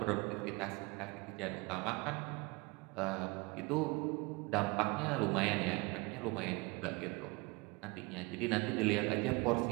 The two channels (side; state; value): left; quieter; 26.0 dB